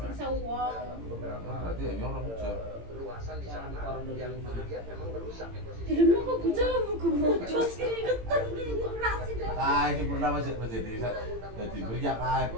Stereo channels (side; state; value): left; late; 18 ms